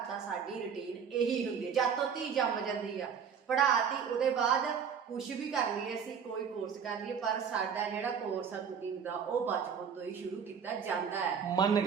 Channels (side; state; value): left; quieter; 7.0 dB